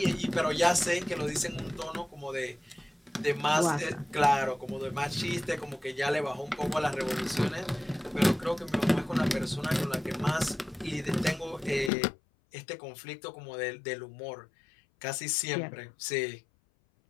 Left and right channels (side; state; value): right; drops out; at 11.9 s